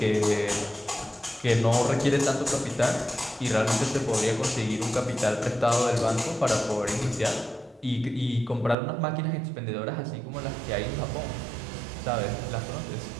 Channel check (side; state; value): left; drops out; at 8.8 s